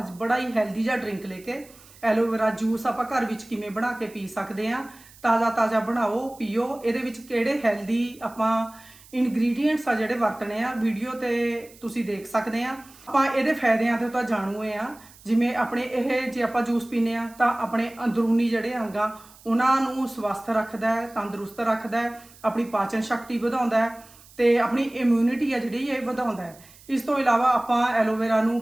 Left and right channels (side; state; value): right; noise; hiss, 24 dB below the sound